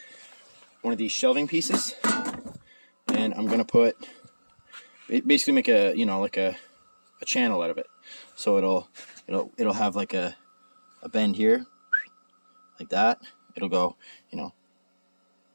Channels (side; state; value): both; inverted; correlation -1.00